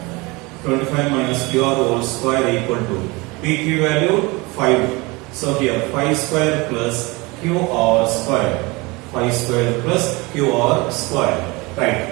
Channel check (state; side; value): quieter; left; 24.8 dB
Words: 25 minus QR whole square equal to PQ value 5. So here 5 square plus QR square. 5 square plus QR square. Right.